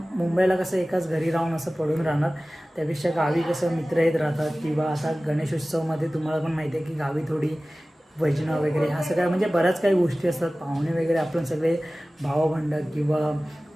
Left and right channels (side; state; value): both; normal; correlation 0.97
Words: मुंबईला कसं एकाच घरी राहून असं पडून राहणार, त्यापेक्षा गावी कसं मित्र येत राहतात. किंवा आता गणेशोत्सवमध्ये तुम्हाला पण माहिती आहे की गावी थोडी भजनं वगैरे ह्या सगळ्या म्हणजे बऱ्याच काही गोष्टी असतात. पाहुणे वगैरे आपण सगळे भावबंड किंवा